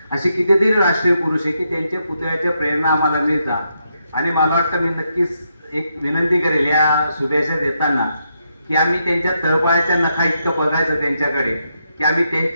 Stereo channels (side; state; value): both; inverted; correlation -0.81